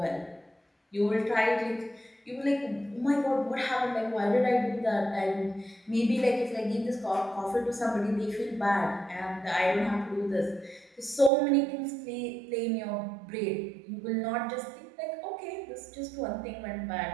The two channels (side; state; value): left; drops out; at 11.3 s